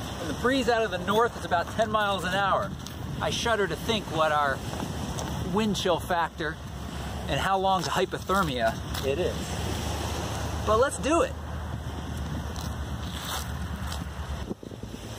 the breeze out of the north is about 10 miles an hour. I shudder to think what our wind chill factor and how long to hypothermia it is. But let's do it.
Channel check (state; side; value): identical; both; correlation 1.00